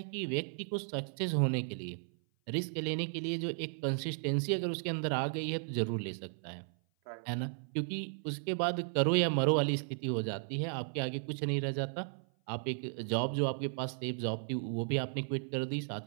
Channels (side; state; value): left; silent; 54 dB below the other